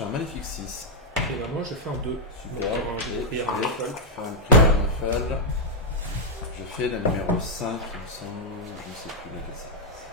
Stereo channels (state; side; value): normal; both; correlation -0.03